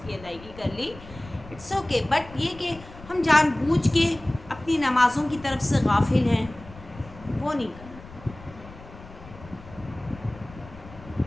کی ادائیگی کر لی، اٹس اوکے. بٹ یہ کہ ہم جان بوجھ کے اپنی نمازوں کی طرف سے غافل ہیں، وہ نہیں کرنا.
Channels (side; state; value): left; noise; rumble, 18 dB below the sound